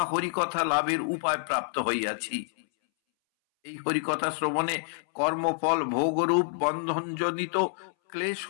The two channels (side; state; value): right; silent; 59 dB below the other